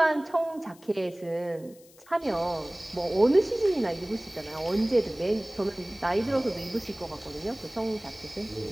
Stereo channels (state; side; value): noise; left; hiss, 25 dB below the sound